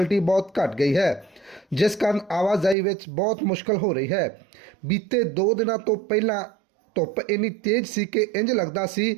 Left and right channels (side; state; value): left; drops out; at 2.8 s